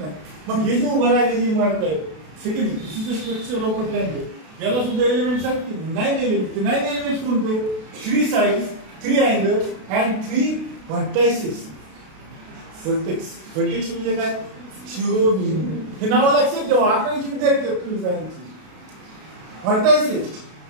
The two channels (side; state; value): left; late; 32 ms